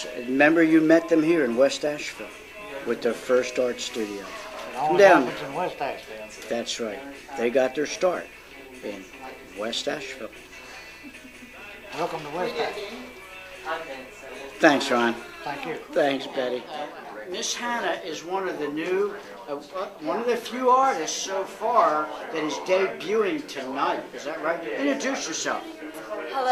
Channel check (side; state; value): both; identical; correlation 1.00